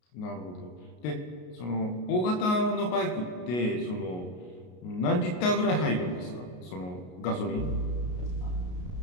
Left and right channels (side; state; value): right; late; 33 ms